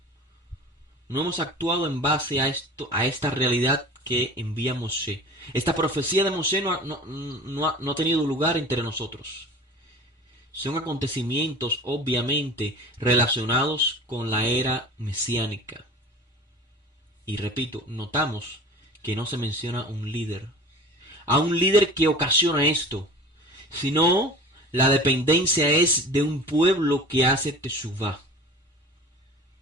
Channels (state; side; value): normal; both; correlation 0.39